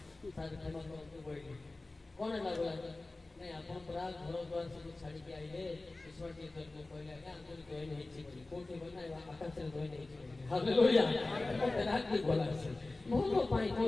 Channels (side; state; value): right; quieter; 3.1 dB